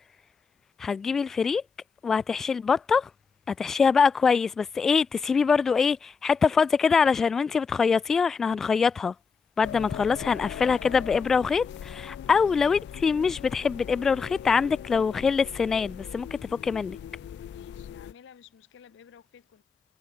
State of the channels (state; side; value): quieter; right; 5.4 dB